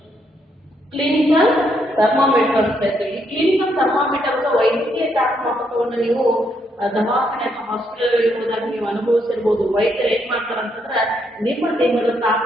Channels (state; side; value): normal; both; correlation 0.75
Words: ಕ್ಲಿನಿಕಲ್ ಥರ್ಮಾಮೀಟರ್ ಅಂತ ಹೇಳ್ತೀವಿ. ಈ ಕ್ಲಿನಿಕಲ್ ಥರ್ಮಾಮೀಟರ್ ಅಥವಾ ವೈದ್ಯಕೀಯ ತಾಪಮಾಪಕವನ್ನು ನೀವು ದವಾಖಾನೆ ಅಥವಾ ಹಾಸ್ಪಿಟಲ್ ಹೋದಾಗ ನೀವು ಅನುಭವಿಸಿರ್ಬೋದು. ವೈದ್ಯರು ಏನ್ ಮಾಡ್ತಾರೆ ಅಂತಂದ್ರೆ ನಿಮ್ಮ ದೇಹದ